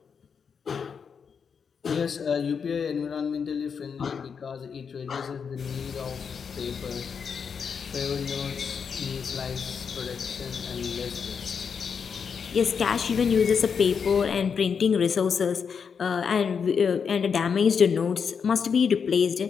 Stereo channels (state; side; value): quieter; right; 6.4 dB